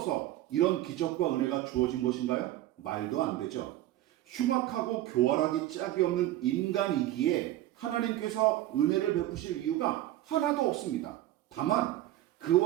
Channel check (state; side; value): quieter; left; 14.4 dB